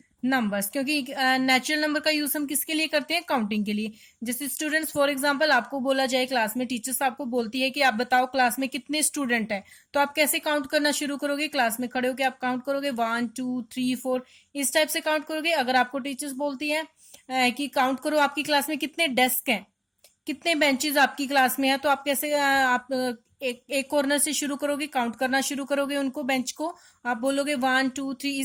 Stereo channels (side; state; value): both; identical; correlation 1.00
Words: numbers. क्योंकि नेचुरल नंबर का यूज हम किसके लिए करते हैं? काउंटिंग के लिए। जैसे स्टूडेंट्स, फॉर एग्जांपल आपको बोला जाए क्लास में, टीचर्स आपको बोलती है कि आप बताओ क्लास में कितने स्टूडेंट हैं, तो आप कैसे काउंट करना शुरू करोगे? क्लास में खड़े होकर आप काउंट करोगे 1 2 3 4, इस टाइप से काउंट करोगे। अगर आपको टीचर्स बोलती है कि काउंट करो आपकी क्लास में कितने डेस्क हैं, कितने बेंचेस आपकी क्लास में है, तो आप कैसे आप एक कॉर्नर से शुरू करोगे, काउंट करना शुरू करोगे उनको, बेंच को। आप बोलोगे 1 2 3,